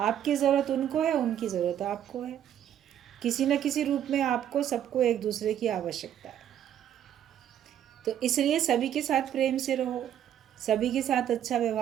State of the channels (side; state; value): left; quieter; 10.3 dB